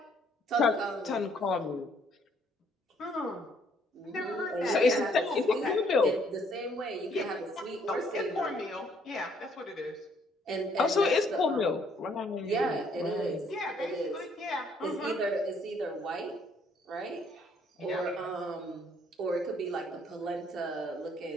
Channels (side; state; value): both; normal; correlation 0.65